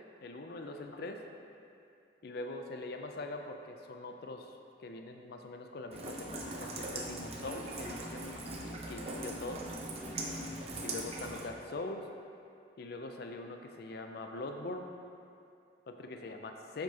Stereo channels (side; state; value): both; normal; correlation 0.21